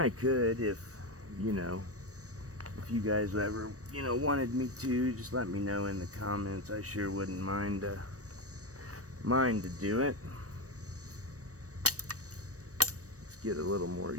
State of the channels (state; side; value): late; left; 0.66 ms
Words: could if, you know, if you guys ever, you know, wanted me to, just let me know in the comments. I sure wouldn't mind to do it. Let's get a little more